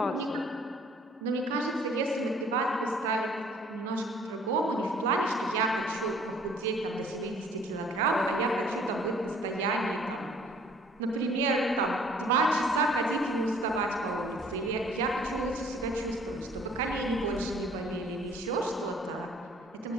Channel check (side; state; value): both; normal; correlation 0.56